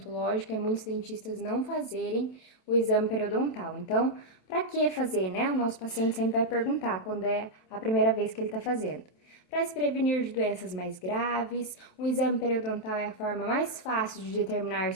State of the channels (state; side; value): late; right; 27 ms